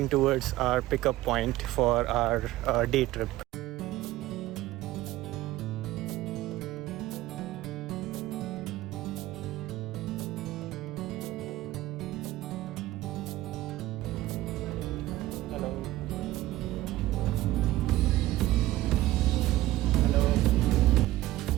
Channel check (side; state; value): left; quieter; 16.2 dB